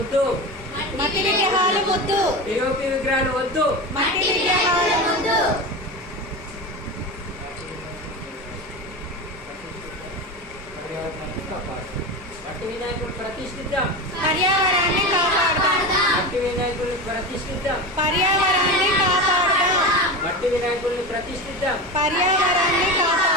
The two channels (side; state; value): both; normal; correlation 0.24